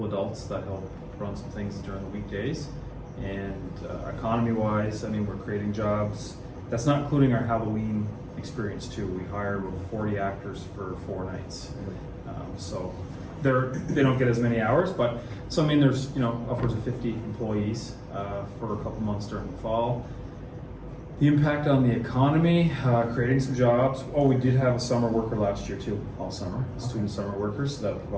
adults that help run some things during the weekdays. And economy-wise, I mean, we're creating jobs. That's not including our Halloween experience too. We hire about 40 actors for 4 nights. So they don't get as many hours, but so I mean, there's upwards of 50 employees for a couple months during the fall. The impact on the economy, creating some jobs. Oh, we did have a summer worker last year too, all summer, student summer workers. So that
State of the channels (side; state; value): both; identical; correlation 1.00